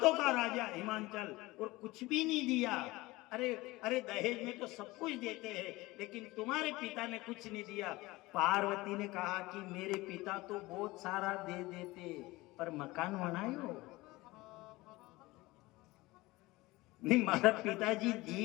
का राजा हिमांचल, और कुछ भी नहीं दिया। अरे दहेज में तो सब कुछ देते हैं, लेकिन तुम्हारे पिता ने कुछ नहीं दिया। पार्वती ने कहा कि मेरे पिता तो बहुत सारा दे देते, पर मकान बनायो नहीं। मारा पिताजी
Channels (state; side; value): quieter; right; 20.4 dB